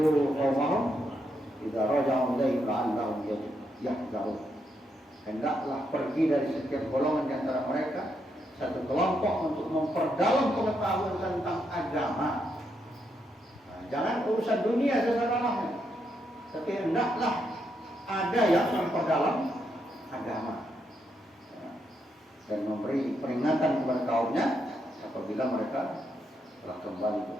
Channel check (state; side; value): normal; both; correlation 0.80